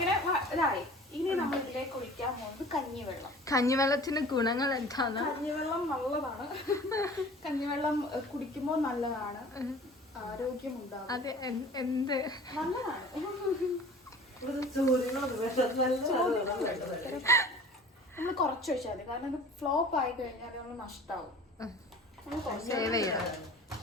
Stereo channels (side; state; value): both; normal; correlation 0.44